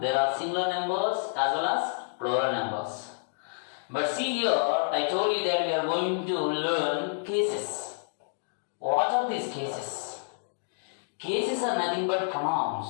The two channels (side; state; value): right; silent; digital silence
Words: there are singular numbers as well as plural numbers. But see here, I told you that we are going to learn cases. What are these cases? Cases are nothing but